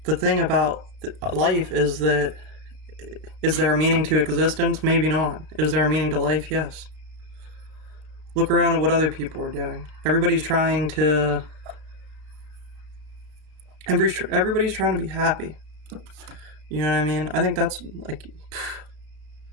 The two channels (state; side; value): late; left; 32 ms